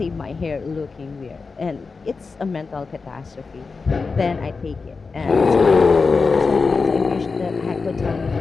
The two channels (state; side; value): quieter; right; 4.5 dB